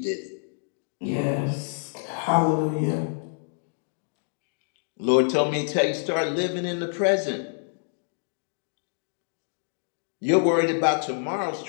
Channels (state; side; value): silent; right; digital silence